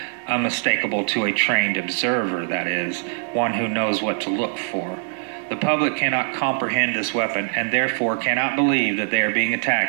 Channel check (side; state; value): left; silent; 64 dB below the other